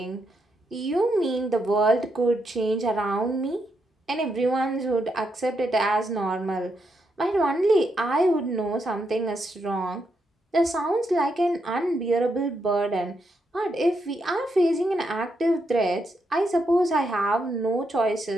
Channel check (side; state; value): both; normal; correlation 0.81